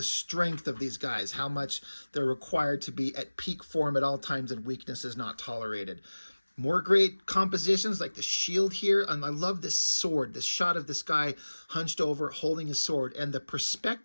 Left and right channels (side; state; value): both; inverted; correlation -1.00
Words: strength of these guys, how much they're required to be at peak form at all times and weakness is not tolerated. More great compositions like the shield here. And I love this sword, this shot of this guy hunched over holding his sword and the